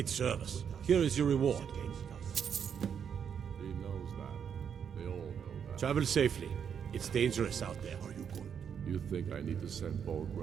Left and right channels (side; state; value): left; quieter; 7.7 dB